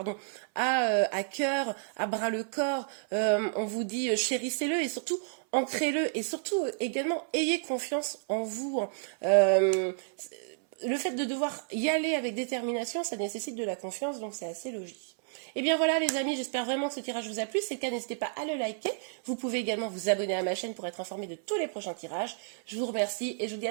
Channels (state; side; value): silent; left; 57 dB below the other